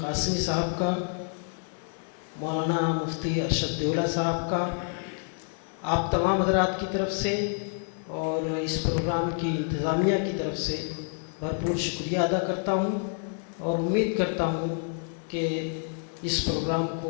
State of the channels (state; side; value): silent; right; 59 dB below the other